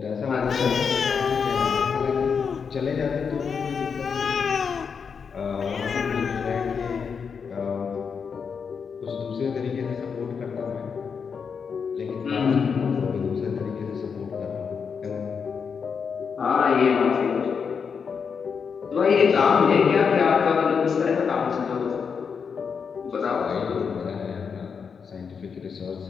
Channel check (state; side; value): quieter; right; 6.2 dB